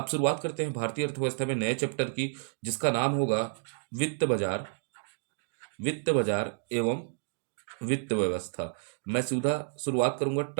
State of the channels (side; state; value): left; silent; digital silence